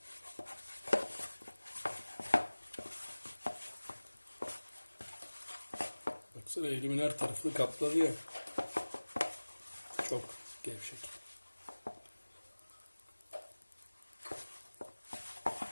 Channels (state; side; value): inverted; both; correlation -1.00